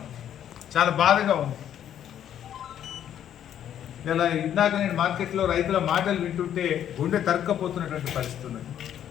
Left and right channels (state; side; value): quieter; right; 10.2 dB